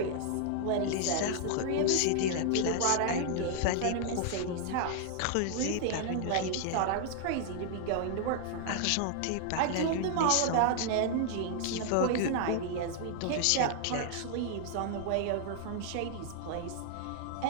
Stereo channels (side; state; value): both; different; correlation 0.00